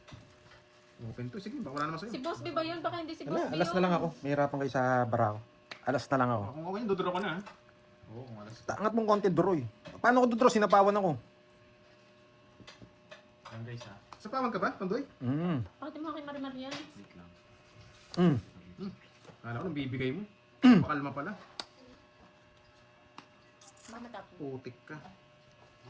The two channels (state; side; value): identical; both; correlation 1.00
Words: Open to. Sige, baka wala naman Si sa'yo. Boss B ba yun? Baka hindi si Boss Wala, B alas na lang ako. Mahirapan kayo sa barako. Alas na lang ako. Kung ako yun, duduro ko na. Oo, kung alas. Angat mong konti draw eh. Paano ko draw? Sinapawan ako. Yan guys ha. Sa pawag ka ba, Pandoy? Bakit mo kay Marimar yan? Wait lang. Mm. Kala ko nang bibigay mo. Pakalma pala. Baka matapos. Putik ka.